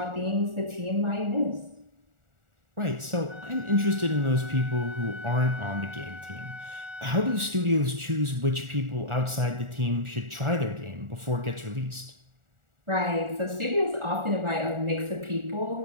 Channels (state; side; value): late; left; 1.4 ms